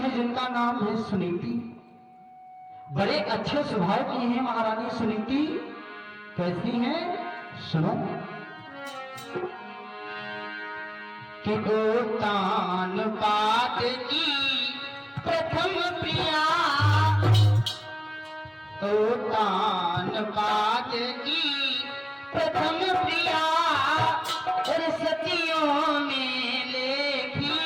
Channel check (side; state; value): both; identical; correlation 1.00